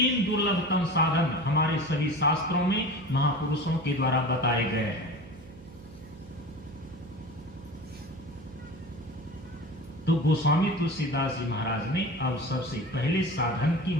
दुर्लभतम साधन हमारे सभी शास्त्रों में महापुरुषों के द्वारा बताए गए हैं। तो गोस्वामी तुलसीदास जी महाराज ने अब सबसे पहले साधन की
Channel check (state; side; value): noise; right; hum, 18 dB below the sound